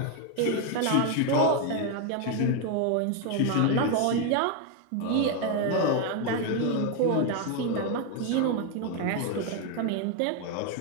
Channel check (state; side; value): different; both; correlation 0.01